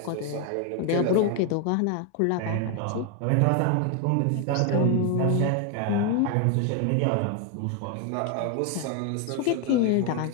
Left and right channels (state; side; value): different; both; correlation 0.01